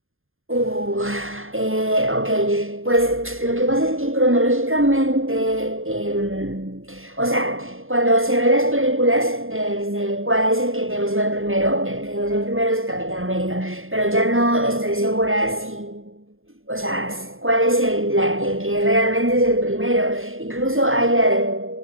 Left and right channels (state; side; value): late; left; 0.60 ms